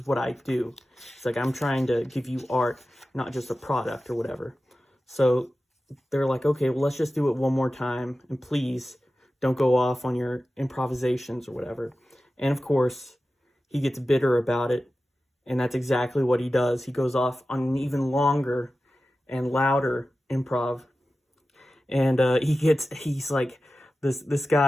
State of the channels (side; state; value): both; normal; correlation 0.94